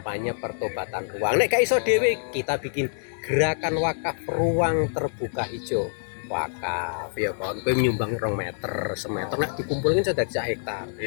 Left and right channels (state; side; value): silent; right; digital silence